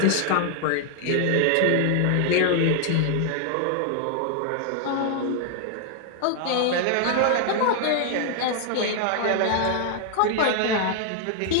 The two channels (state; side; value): different; both; correlation 0.00